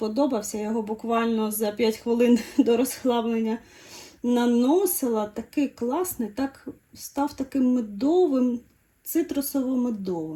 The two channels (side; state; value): both; identical; correlation 1.00